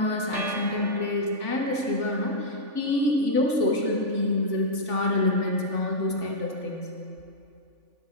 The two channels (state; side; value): late; left; 3.5 ms